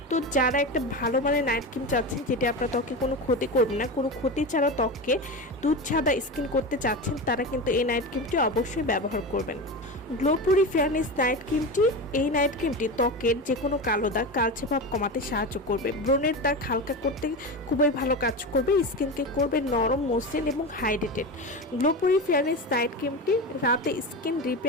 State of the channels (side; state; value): both; normal; correlation 0.23